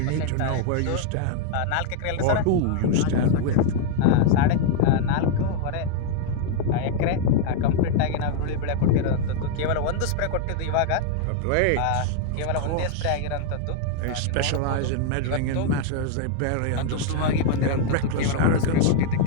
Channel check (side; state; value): both; different; correlation 0.00